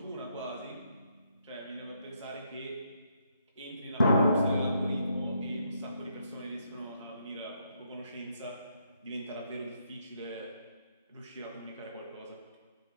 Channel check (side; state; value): both; inverted; correlation -0.75